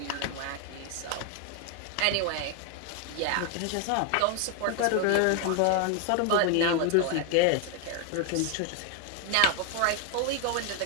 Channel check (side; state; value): both; different; correlation 0.01